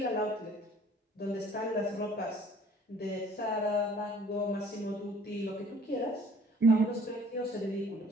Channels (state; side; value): normal; both; correlation 0.56